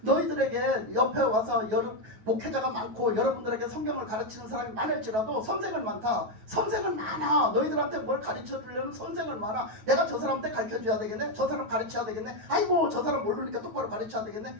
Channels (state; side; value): late; left; 9.3 ms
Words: 너희들에게 옆에 와서 목회자가 많고 여러분들에게 성경을 가르치는 사람이 많을지라도 선생은 많다. 선생은 많아. 너희들한테 뭘 가르쳐 주려는 선생은 많아. 내가 저 사람한테 가르쳐 줘야 되겠네. 저 사람 가르쳐야 되겠네. 아이고 저 사람 모르니까 똑바로 가르쳐야